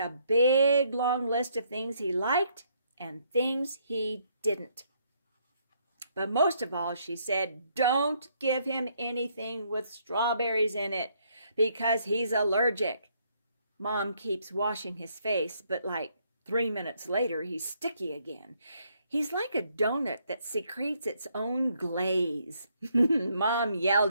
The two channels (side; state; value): both; inverted; correlation -0.71